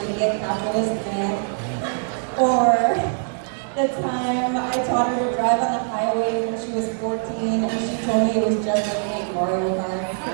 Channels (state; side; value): silent; left; digital silence